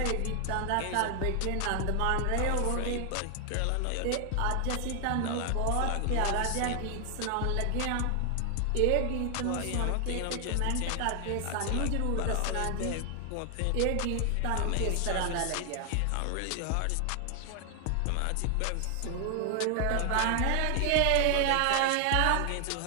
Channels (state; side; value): different; both; correlation 0.00